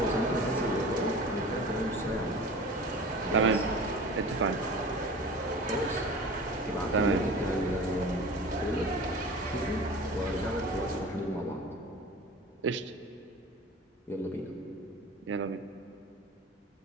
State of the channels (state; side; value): normal; both; correlation 0.38